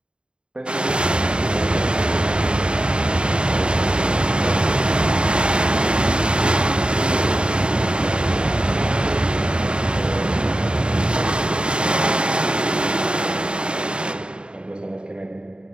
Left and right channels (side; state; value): left; late; 0.052 ms